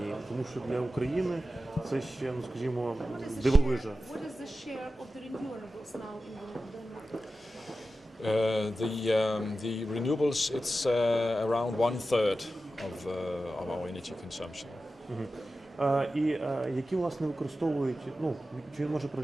Тому що для України це ще, ну, скажімо, дивовижа. What is the share of the renewables now in Denmark? The renewables, it's around 1/3 of our energy consumption. І які, власне, використовують, ну, чи він може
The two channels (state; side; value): normal; both; correlation 0.93